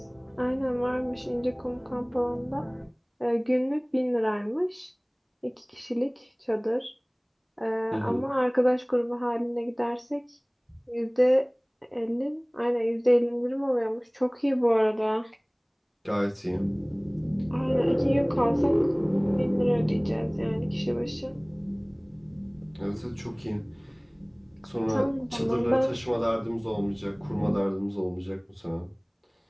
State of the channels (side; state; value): both; identical; correlation 1.00